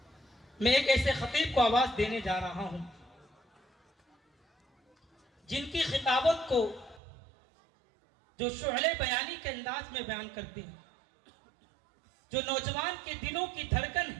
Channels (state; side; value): drops out; left; at 7.0 s